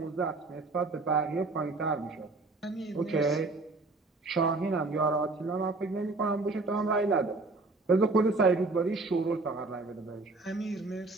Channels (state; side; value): quieter; left; 3.4 dB